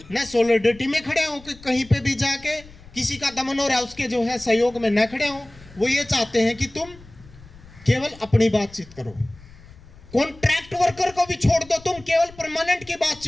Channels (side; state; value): left; noise; rumble, 22 dB below the sound